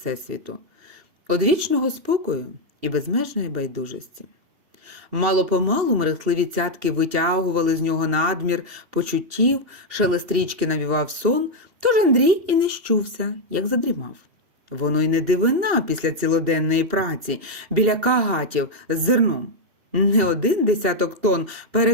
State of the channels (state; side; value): late; left; 2.8 ms